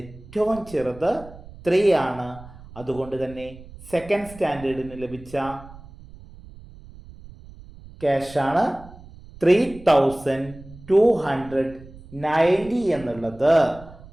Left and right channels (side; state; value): right; noise; rumble, 19 dB below the sound